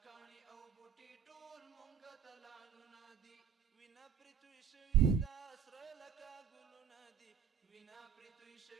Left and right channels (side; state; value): left; quieter; 8.1 dB